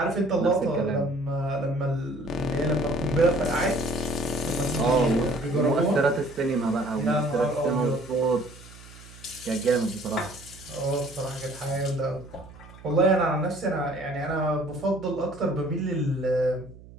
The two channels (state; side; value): noise; right; hum, 20 dB below the sound